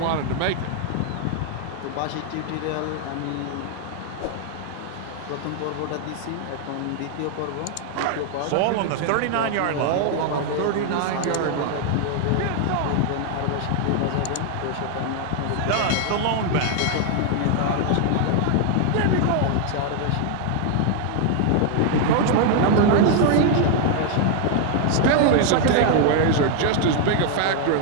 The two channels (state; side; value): different; both; correlation 0.00